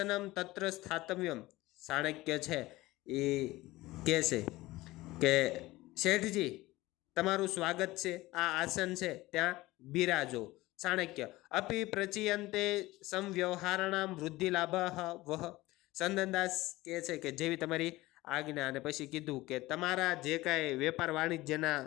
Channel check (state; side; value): quieter; right; 18.8 dB